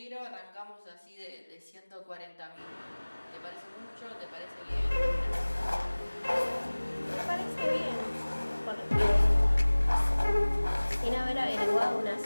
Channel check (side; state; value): both; inverted; correlation -1.00